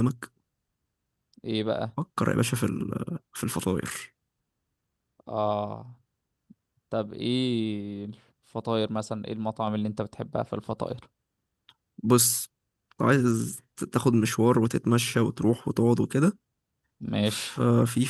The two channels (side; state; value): both; identical; correlation 1.00